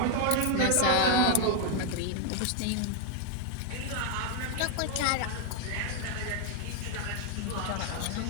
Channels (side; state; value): both; different; correlation 0.01